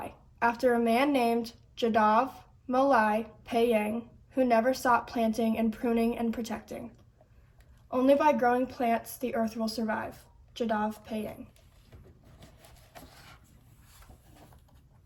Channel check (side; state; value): both; identical; correlation 1.00